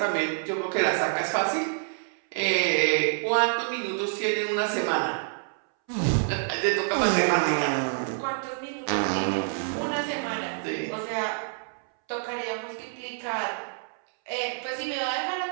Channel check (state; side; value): silent; left; 60 dB below the other